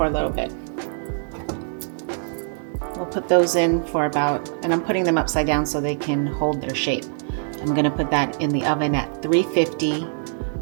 a little bit. We'll put those in for about, and I'm putting them upside down so they can hold their shape. I'm gonna put that in the oven at 350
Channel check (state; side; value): silent; left; 61 dB below the other